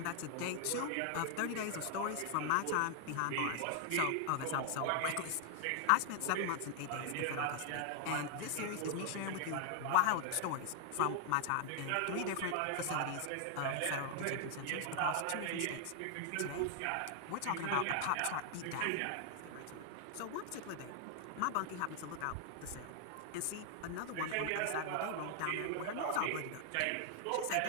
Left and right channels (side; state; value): both; different; correlation 0.00